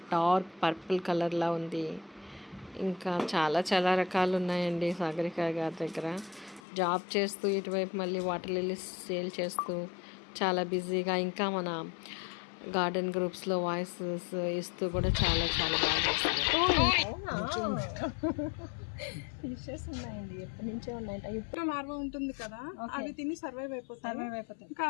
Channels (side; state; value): right; drops out; at 6.6 s